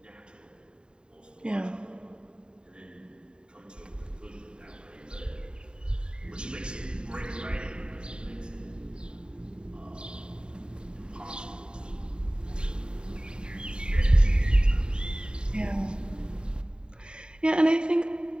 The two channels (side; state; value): left; late; 0.049 ms